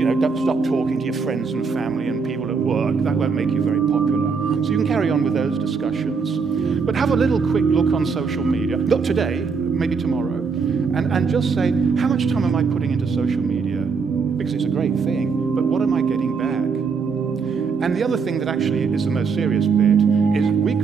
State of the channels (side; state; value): left; quieter; 5.3 dB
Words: don't stop talking to your friends and family and people at work. That won't make you very popular. So you can carry on with those discussions. But have a little quick look on social media. Not today, maybe tomorrow. And just say, how much time am I putting into social media? Because it's a great thing, but what am I getting back? And the other thing that actually is the most serious bit is we've